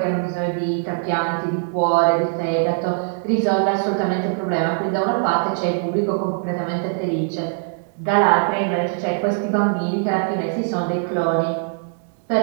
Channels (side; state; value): left; silent; 65 dB below the other